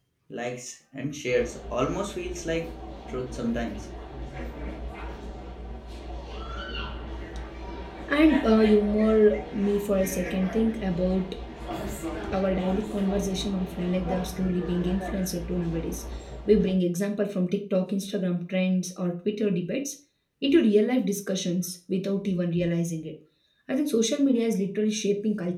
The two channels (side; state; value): both; identical; correlation 1.00